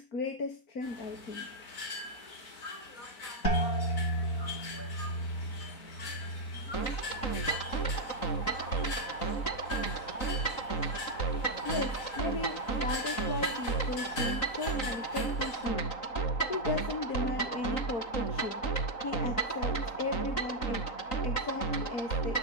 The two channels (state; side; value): late; right; 3.9 ms